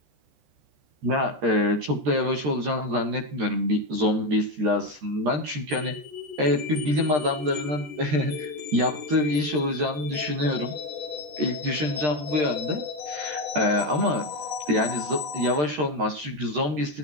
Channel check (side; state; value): left; late; 13 ms